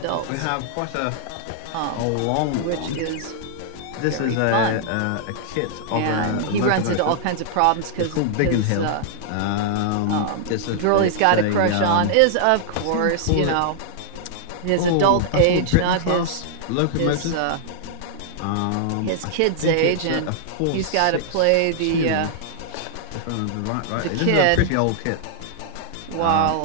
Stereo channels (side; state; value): both; different; correlation -0.01